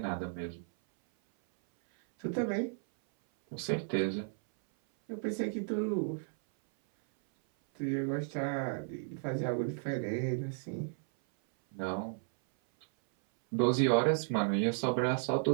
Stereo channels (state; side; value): silent; left; 55 dB below the other